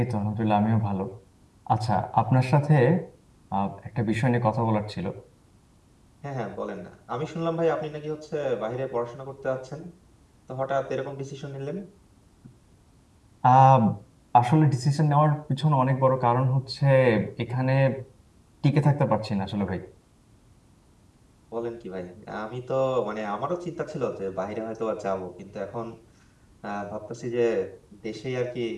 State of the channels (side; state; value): both; identical; correlation 1.00